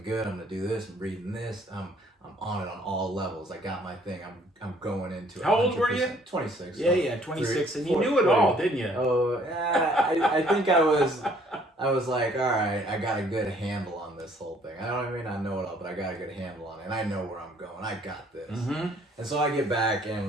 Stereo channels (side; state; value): both; normal; correlation 0.61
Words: good, I'm gonna do this, I'm reading this, I'm on it on all levels, I got my thing, I'm going into it. How old were you? 26. Yeah, 26, and you knew it all, didn't you? Oh, yeah, I think I was like, all right, I got a good handle on this whole thing. I don't mean I know it all, but I got a good handle on it, and I know where I'm going. I got this. Mm-hmm. And so I get back,